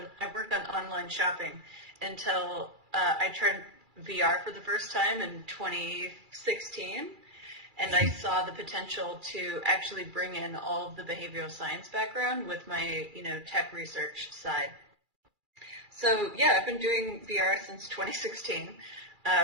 worked on online shopping until I tried VR for the first time in 2016, and I saw the potential to actually bring in all of the behavioral science background with my, tech research side. So yeah, I've been doing VR since 2016,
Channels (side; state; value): left; late; 2.4 ms